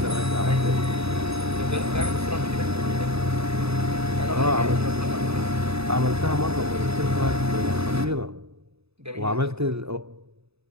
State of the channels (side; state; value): left; late; 0.79 ms